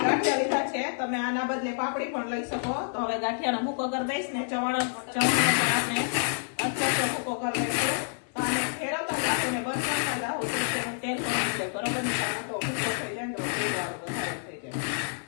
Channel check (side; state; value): right; silent; 59 dB below the other